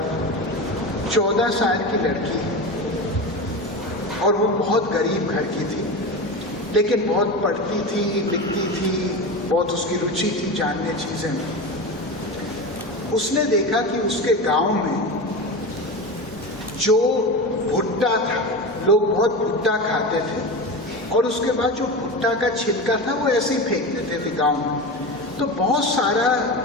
14 साल की लड़की है और वो बहुत गरीब घर की थी, लेकिन बहुत पढ़ती थी, लिखती थी, बहुत उसकी रुचि थी जानने चीज़ें में। उसने देखा कि उसके गांव में जो भुट्टा था, लोग बहुत भुट्टा खाते थे और उसके बाद जो भुट्टा का छिलका था वो ऐसे ही फेंक देते थे गांव में। तो बहुत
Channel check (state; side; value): normal; both; correlation 0.24